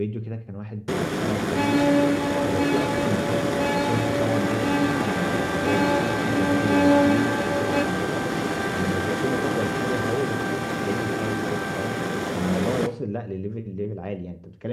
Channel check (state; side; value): identical; both; correlation 1.00